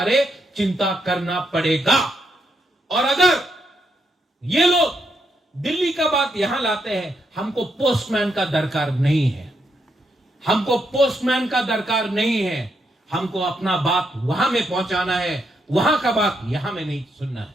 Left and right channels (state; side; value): normal; both; correlation 0.79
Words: चिंता करना पड़ेगा। और अगर ये लोग दिल्ली का बात यहां लाते हैं, हमको पोस्टमैन का दरकार नहीं है। हमको पोस्टमैन का दरकार नहीं है। हमको अपना बात वहां में पहुंचाना है, वहां का बात यहां में नहीं सुनना है।